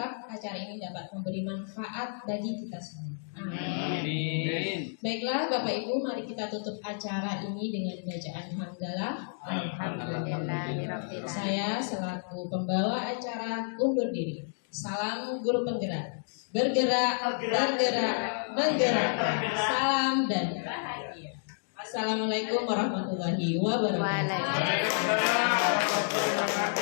acara ini dapat memberi manfaat bagi kita semua. Amin. Baiklah Bapak Ibu, mari kita tutup acara ini dengan bacaan hamdalah. Alhamdulillah. Saya selaku pembawa acara undur diri. Salam guru penggerak. Bergerak, bergerak, menggerak. Salam dan bahagia. Assalamualaikum warahmatullahi wabarakatuh.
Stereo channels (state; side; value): silent; right; digital silence